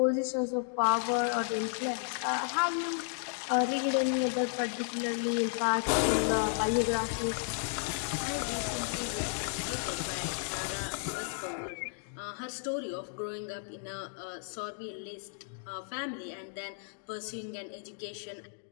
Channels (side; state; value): right; silent; digital silence